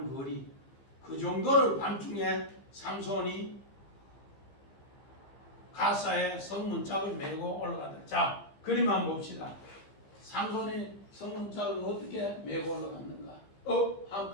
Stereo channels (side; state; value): right; late; 15 ms